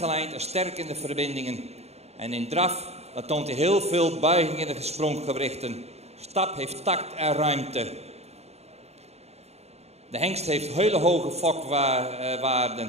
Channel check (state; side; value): late; left; 0.31 ms